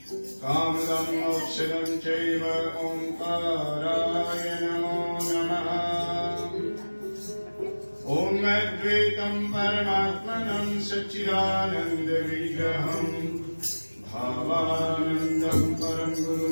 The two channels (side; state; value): both; inverted; correlation -1.00